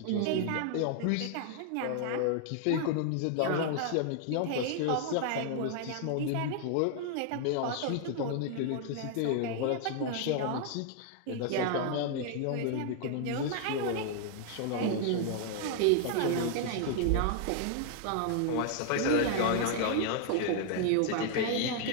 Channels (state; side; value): different; both; correlation 0.00